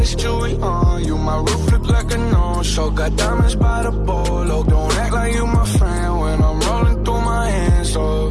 jewelry on you. My roof look like a no-show. Got diamonds by the bolo. Don't act like you my friend when I'm rolling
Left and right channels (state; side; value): identical; both; correlation 1.00